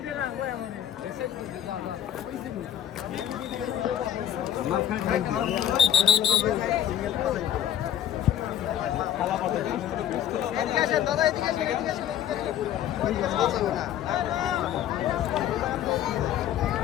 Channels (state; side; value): quieter; right; 10.7 dB